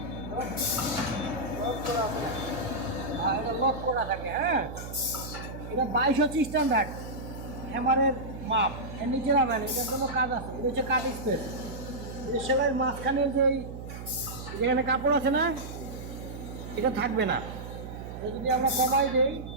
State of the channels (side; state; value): right; noise; hum, 10 dB below the sound